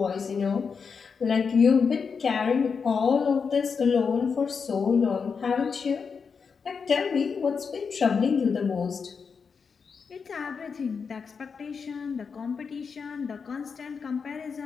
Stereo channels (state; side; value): quieter; right; 5.7 dB